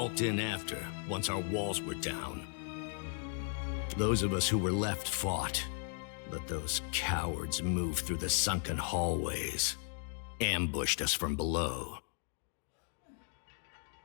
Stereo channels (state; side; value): silent; right; 54 dB below the other